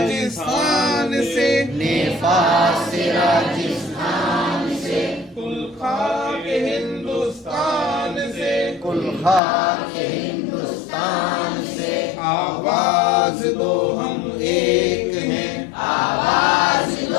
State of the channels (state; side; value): drops out; right; at 9.4 s